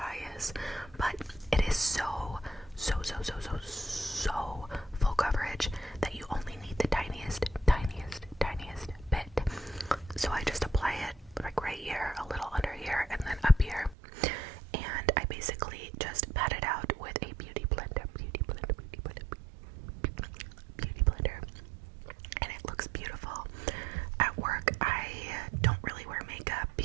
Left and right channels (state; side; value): drops out; left; at 14.0 s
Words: is. But it is so full coverage that you only need the tiniest bit. So I just apply it like right here, a little under here, and then up here. And I basically just pat it out with a beauty blender. And it looks beautiful. At work, I don't really wear makeup